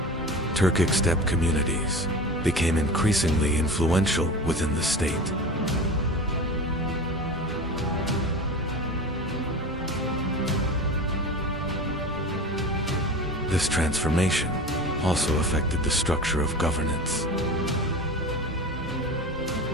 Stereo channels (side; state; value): both; normal; correlation 0.31